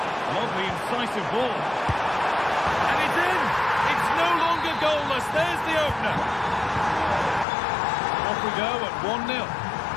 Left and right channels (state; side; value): drops out; right; at 7.5 s